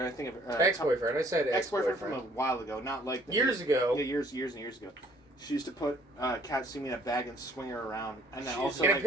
think of Ex-boyfriend. I said ex-boyfriend ex-boyfriend. from a while ago, not like Years ago. Yeah, years and years ago. She used to put Katsumi in a bag and swing her around, and then also In a like,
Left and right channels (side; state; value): both; normal; correlation 0.59